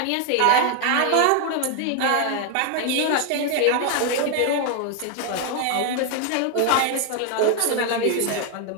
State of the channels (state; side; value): different; both; correlation 0.00